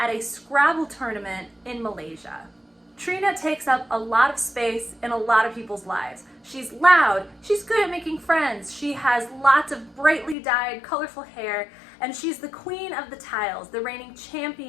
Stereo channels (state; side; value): drops out; right; at 10.4 s